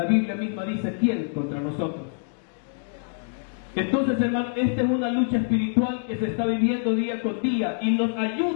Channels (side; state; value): right; silent; digital silence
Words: Biblia misma dice, ¿quién contra nosotros? Entonces, hermanos, esta es una lucha espiritual que se está viviendo día con día y nos